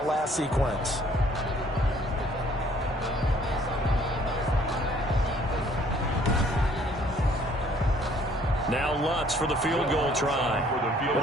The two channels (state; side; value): normal; both; correlation 0.60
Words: last sequence. Now Lutz for the field goal try.